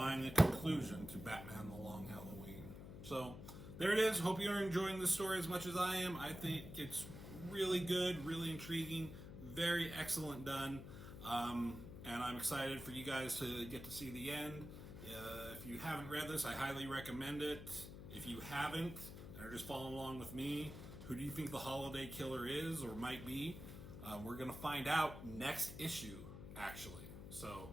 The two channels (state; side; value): noise; left; hum, 11 dB below the sound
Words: a conclusion to Batman the Long Halloween. So there it is. Hope you're enjoying this story as much as I am. I think it's really good, really intriguing, very excellent done. And I'm excited for you guys to get to see the end. If you haven't read this, I highly recommend it. If you haven't, and are just following along with me, who do you think the holiday killer is or might be? We're going to find out next issue, actually. So